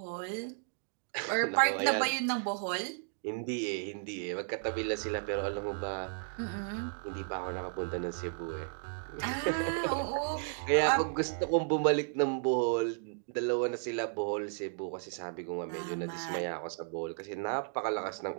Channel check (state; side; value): silent; left; digital silence